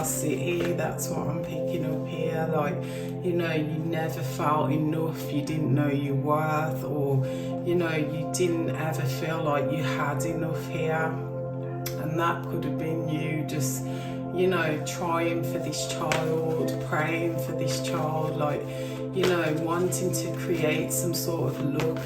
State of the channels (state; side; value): identical; both; correlation 1.00